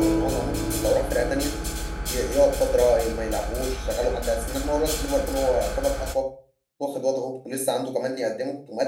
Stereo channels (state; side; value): identical; both; correlation 1.00